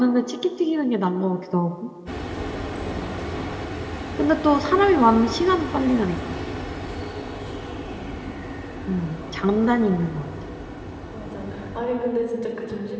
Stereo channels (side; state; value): both; identical; correlation 1.00